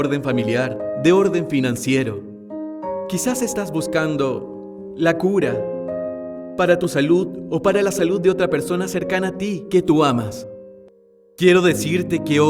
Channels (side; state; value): both; identical; correlation 1.00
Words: familiar, de orden financiero, quizás estás buscando la cura para tu salud o para la salud de otra persona cercana a ti que tú amas. Quiero decirte que